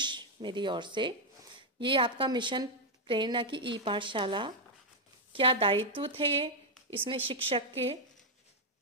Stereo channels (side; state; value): both; normal; correlation 0.00